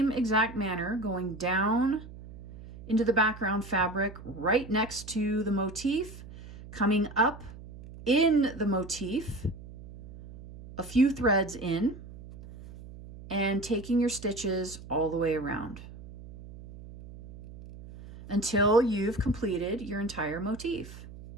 exact manner, going down into the background fabric right next to the motif, coming up in the motif, a few threads in, and taking your stitches all the way around until you've completed your entire motif.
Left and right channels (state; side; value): noise; right; hum, 16 dB below the sound